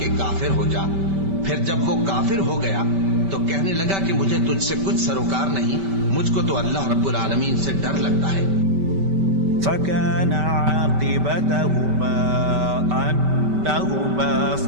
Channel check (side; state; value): left; late; 5.2 ms